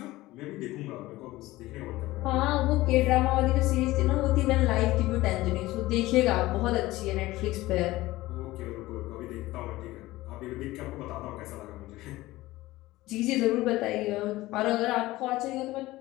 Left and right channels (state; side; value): quieter; right; 18.1 dB